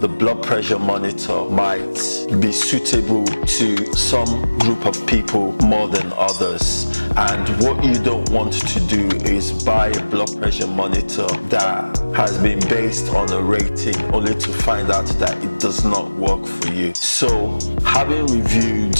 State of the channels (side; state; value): both; inverted; correlation -1.00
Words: the blood pressure monitor might be suitable to some group of people more than others. And what you don't want to do is buy a blood pressure monitor that has been based on a rating only to find out that it does not work for you. So having reviewed